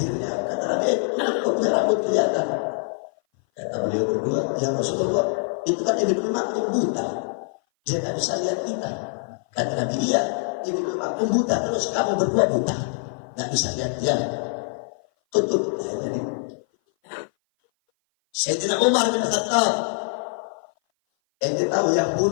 kata Nabi, kok punya rambut kelihatan? Kata beliau berdua, ya Rasulullah, itu kan Ibn Ummi Maktum buta. Dia nggak bisa lihat kita. Kata Nabi, iya, Ibn Ummi Maktum buta, terus kamu berdua buta, nggak bisa lihat dia. Tutup. Jadi Sayyidina Umar bin Khattab, ente tahu yang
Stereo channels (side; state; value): right; silent; 57 dB below the other